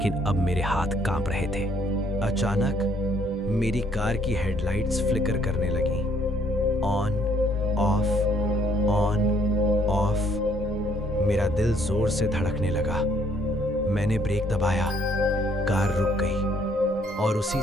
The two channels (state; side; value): normal; both; correlation 0.65